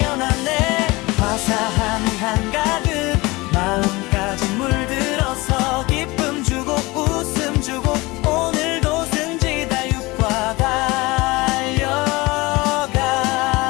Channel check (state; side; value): quieter; right; 22.5 dB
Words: 화사함이 한가득 마음까지 물들어서 기쁨 주고 웃음 주고 오늘도 승지다육과 달려가는